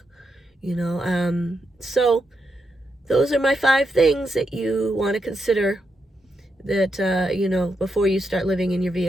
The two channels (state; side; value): normal; both; correlation 0.83